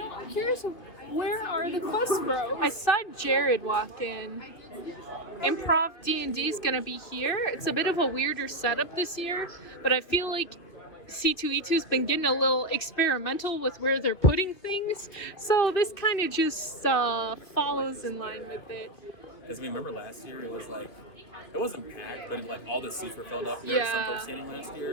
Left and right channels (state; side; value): late; right; 2.3 ms